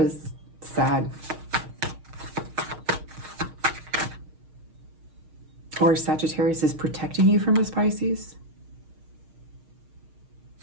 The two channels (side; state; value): left; late; 6.4 ms